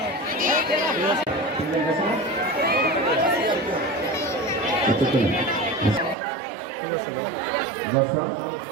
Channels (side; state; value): left; drops out; at 6.2 s